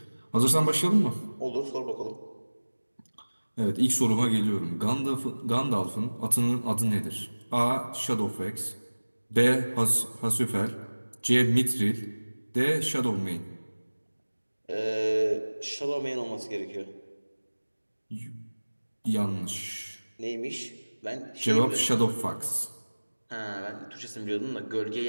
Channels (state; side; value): inverted; both; correlation -1.00